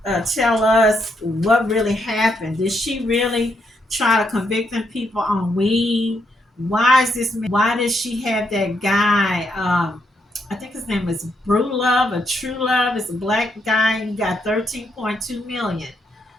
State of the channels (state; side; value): normal; both; correlation 0.77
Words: tell us what really happened. Did she really try to convict them people on weed? Why is this? Why did she have that guy? I think his name is Brew Love or True Love. It's a black guy. He got 13.2 million